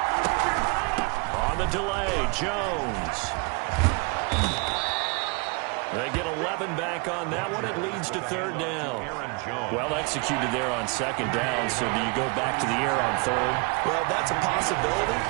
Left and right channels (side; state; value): left; quieter; 31.6 dB